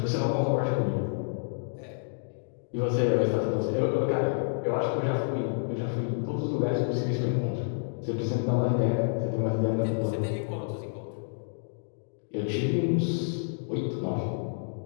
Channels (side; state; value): right; silent; digital silence